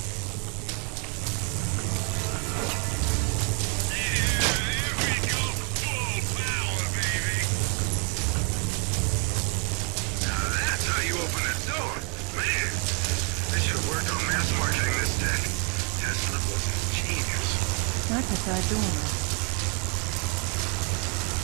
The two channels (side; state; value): left; quieter; 36.5 dB